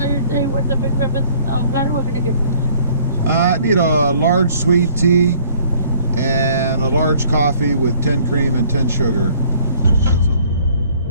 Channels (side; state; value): both; inverted; correlation -0.58